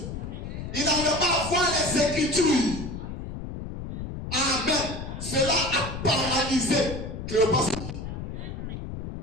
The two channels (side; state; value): left; noise; rumble, 7 dB below the sound